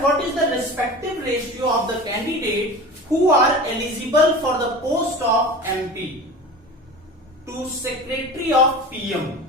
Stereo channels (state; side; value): normal; both; correlation 0.35